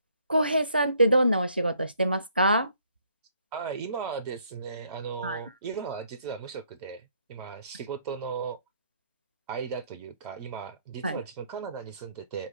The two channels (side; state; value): both; inverted; correlation -0.67